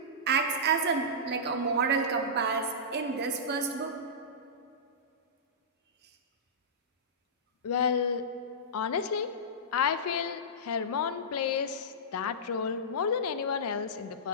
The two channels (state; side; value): normal; both; correlation -0.17